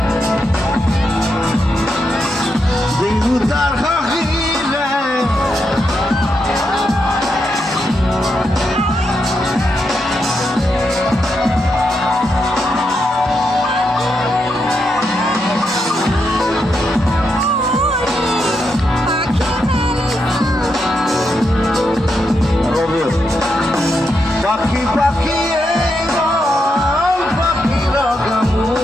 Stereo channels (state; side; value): normal; both; correlation 0.83